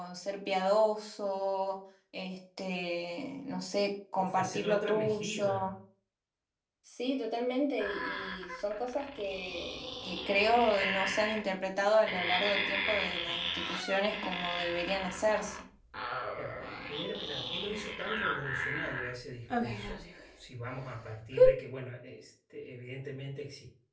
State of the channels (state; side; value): identical; both; correlation 1.00